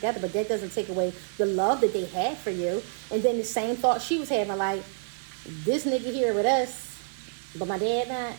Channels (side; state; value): left; silent; digital silence